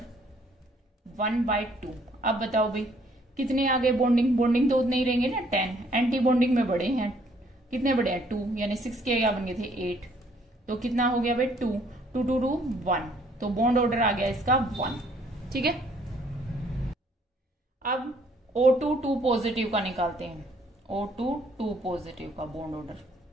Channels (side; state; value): both; normal; correlation 0.64